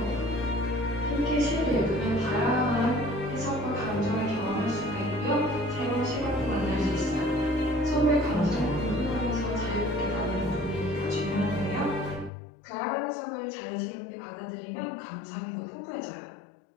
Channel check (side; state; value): right; drops out; at 12.3 s